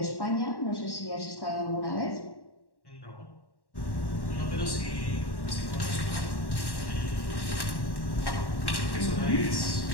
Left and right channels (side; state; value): right; late; 1.1 ms